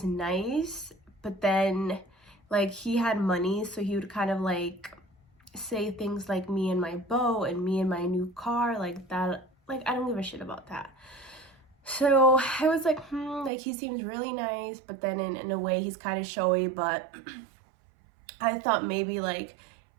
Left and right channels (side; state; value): left; drops out; at 13.5 s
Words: nice. But then, like, he had money. So he would kind of like... say things like me and my boat and me and my new car, like that. Like, I don't give a shit about that. So I was like, like, he seems really nice, but then in a way he's kind of showy. But I thought maybe like